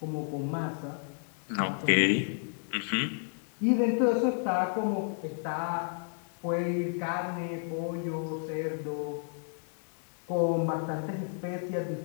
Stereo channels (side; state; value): right; silent; 57 dB below the other